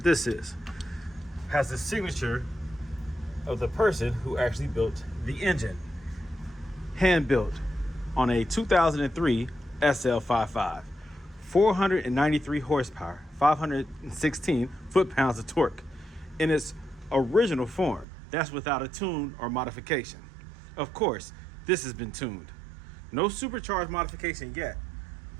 this is. Has the signature of the person who actually built the engine. Hand-built on a 2003 SL55. 493 horsepower, 516 foot-pounds of torque in its original form. That's without a tune or modification. Of course, this has been tuned. No supercharged modification yet,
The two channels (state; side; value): drops out; left; at 18.1 s